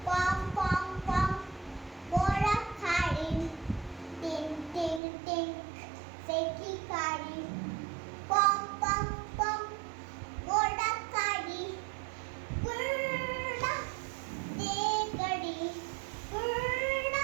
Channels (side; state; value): left; drops out; at 5.0 s